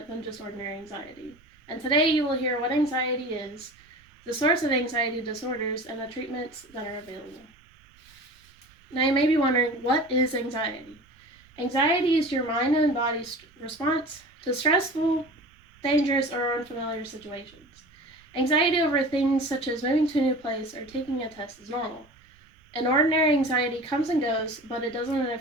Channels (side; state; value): right; noise; rumble, 29 dB below the sound